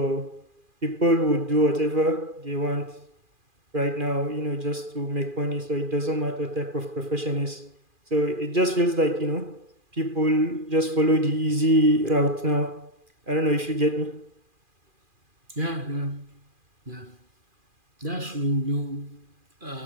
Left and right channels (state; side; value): late; left; 2.4 ms